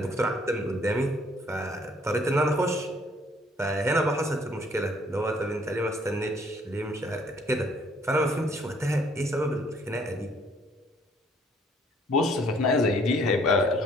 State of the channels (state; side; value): normal; both; correlation 0.62